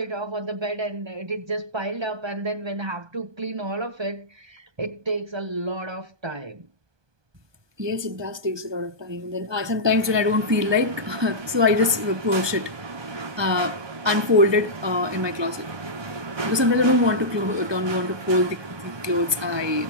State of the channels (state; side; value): late; left; 1.2 ms